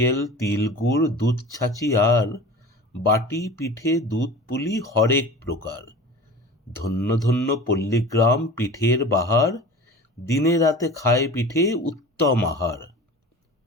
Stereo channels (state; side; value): normal; both; correlation 0.37